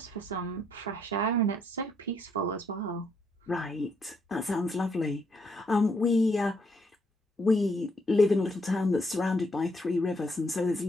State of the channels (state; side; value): normal; both; correlation 0.73